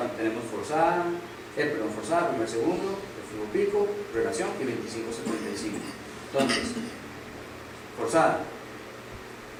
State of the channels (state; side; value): identical; both; correlation 1.00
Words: Tenemos forzada, forzada, primer segundo, el flujo pico, relación y 25-75. Entonces, forzada,